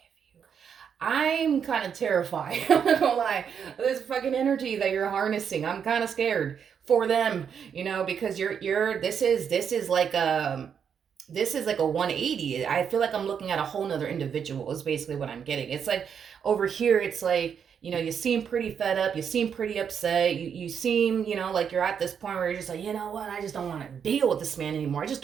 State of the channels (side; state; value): left; quieter; 7.5 dB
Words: you. I'm kind of terrified. I'm not gonna lie. This fucking energy that you're harnessing, I'm kind of scared for them, because this is like a 180. I feel like I'm looking at a whole nother individual is basically what I'm getting. It's like over here, it's like, you seem pretty fed up. You seem pretty upset. You seem, like you're at this point where you're just like, you know what? I just don't want to deal with this man anymore. I just